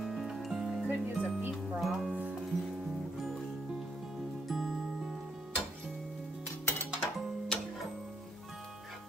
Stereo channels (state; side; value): normal; both; correlation 0.73